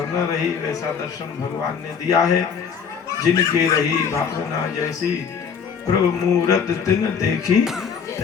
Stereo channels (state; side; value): quieter; right; 6.7 dB